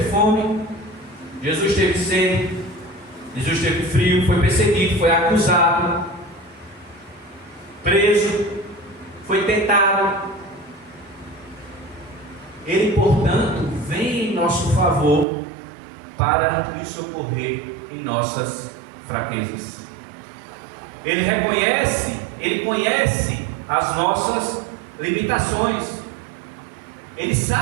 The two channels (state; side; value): drops out; left; at 15.2 s